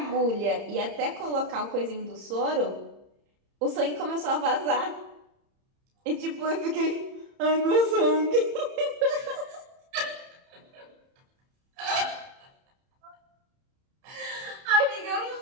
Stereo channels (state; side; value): late; left; 30 ms